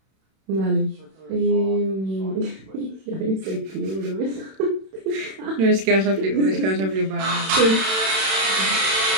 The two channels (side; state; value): left; late; 31 ms